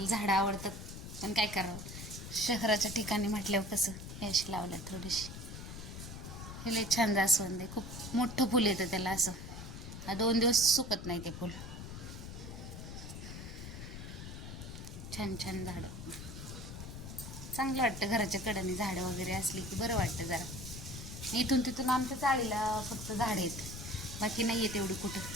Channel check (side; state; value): left; noise; rumble, 10 dB below the sound